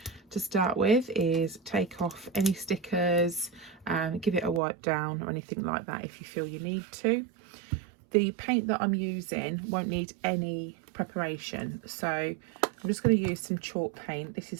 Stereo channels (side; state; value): left; drops out; at 4.6 s